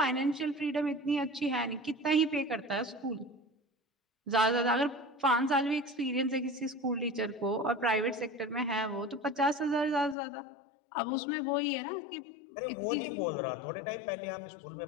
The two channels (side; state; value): right; drops out; at 10.2 s